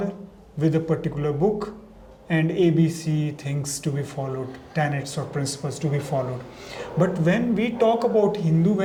with a particular book and ABC things to be followed, tenets or principles to be followed. But when we talk about Hindu,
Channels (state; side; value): identical; both; correlation 1.00